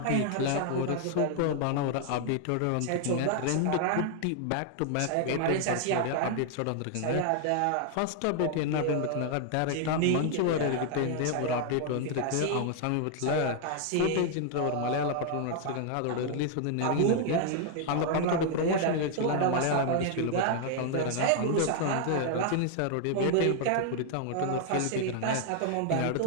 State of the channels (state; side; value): different; both; correlation 0.00